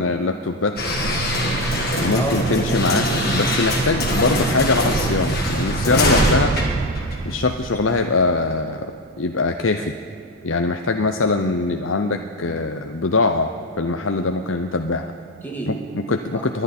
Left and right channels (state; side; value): normal; both; correlation 0.12